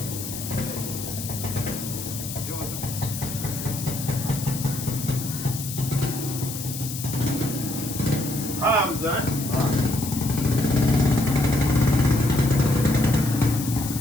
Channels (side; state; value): left; noise; hiss, 8 dB below the sound